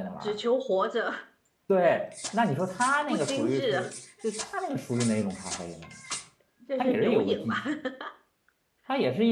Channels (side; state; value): both; identical; correlation 1.00